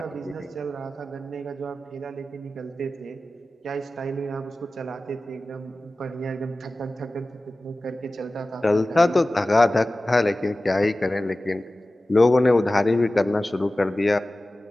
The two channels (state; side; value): normal; both; correlation 0.96